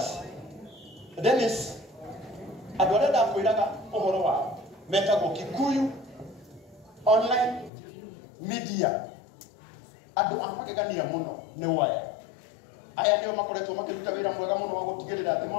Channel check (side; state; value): right; drops out; at 7.7 s